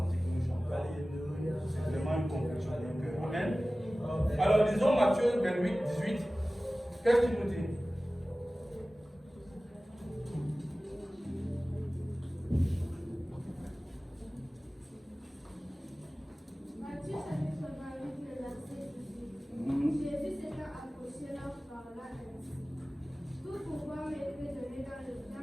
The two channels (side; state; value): both; normal; correlation 0.97